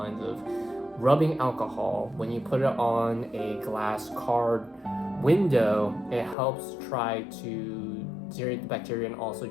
of rubbing alcohol when you put it on a glass car window, it helps try to deteriorate the bacteria, and also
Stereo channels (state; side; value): drops out; right; at 6.4 s